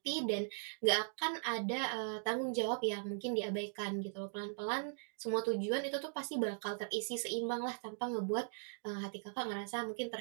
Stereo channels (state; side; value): silent; left; digital silence